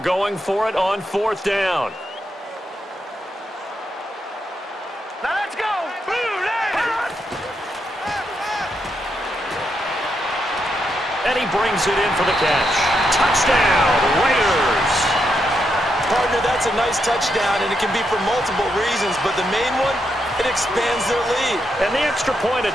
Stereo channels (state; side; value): normal; both; correlation 0.81